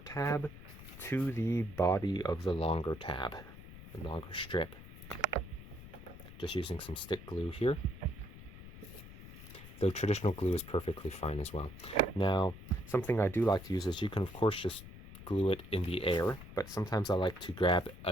tab to the body of the longer tab, the longer strip. Just using some stick glue here. Though traditional glue is perfectly fine as well. Now, something I do like to use is you can of course just glue it in the air, but sometimes I like to grab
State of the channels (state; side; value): noise; left; rumble, 15 dB below the sound